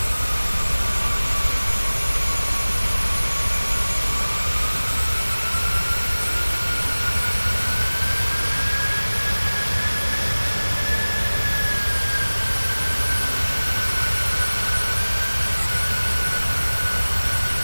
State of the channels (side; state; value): both; inverted; correlation -1.00